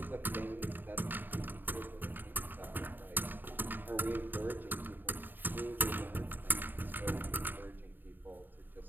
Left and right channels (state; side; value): late; left; 0.092 ms